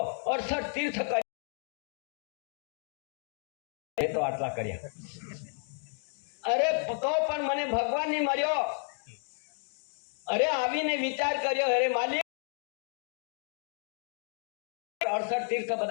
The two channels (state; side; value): silent; right; 56 dB below the other